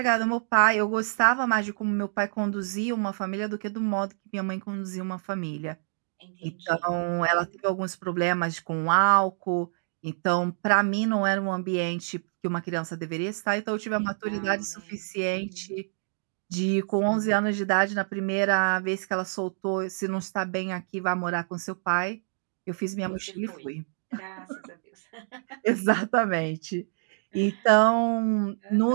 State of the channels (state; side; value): silent; left; digital silence